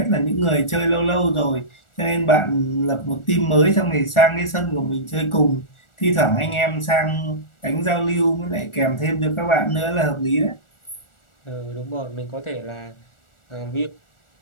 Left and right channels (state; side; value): late; right; 1.4 ms